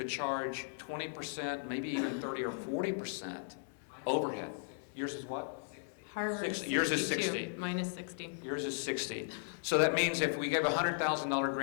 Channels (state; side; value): silent; right; 53 dB below the other